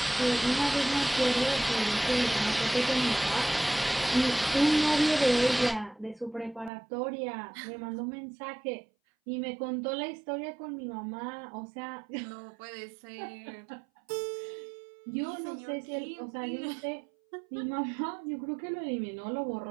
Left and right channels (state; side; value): drops out; left; at 6.7 s